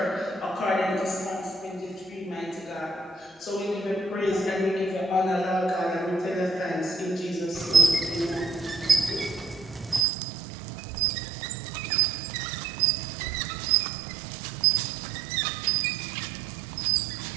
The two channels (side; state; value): left; drops out; at 10.1 s